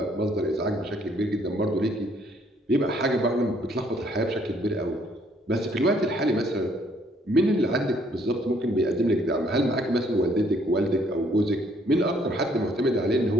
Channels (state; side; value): normal; both; correlation 0.65